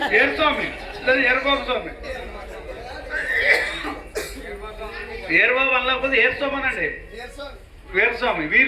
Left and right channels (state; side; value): identical; both; correlation 1.00